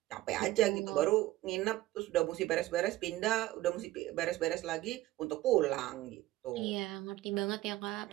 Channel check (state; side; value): quieter; left; 17.0 dB